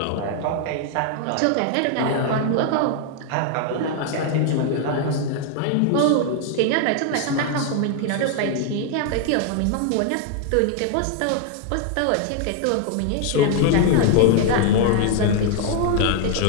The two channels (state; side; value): different; both; correlation 0.00